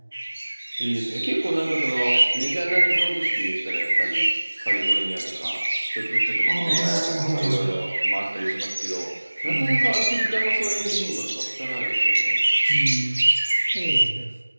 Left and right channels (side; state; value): both; inverted; correlation -1.00